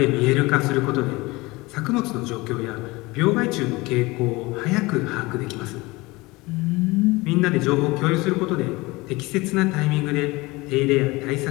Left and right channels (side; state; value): right; quieter; 22.5 dB